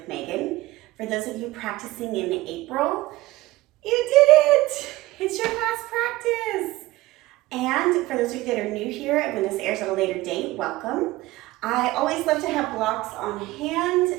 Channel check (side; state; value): left; quieter; 18.5 dB